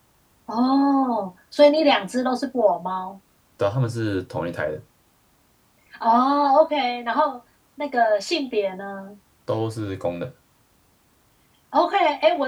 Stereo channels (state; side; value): identical; both; correlation 1.00